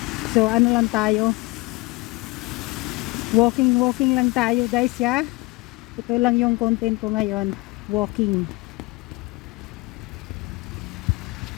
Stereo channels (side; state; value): right; quieter; 22.9 dB